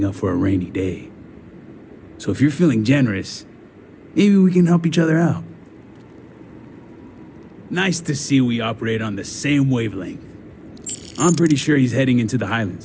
up for a rainy day. So if you're feeling generous, maybe we can help each other out. Nice to see we operate on the same wavelength. I'm pretty sure he's heading into the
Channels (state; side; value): identical; both; correlation 1.00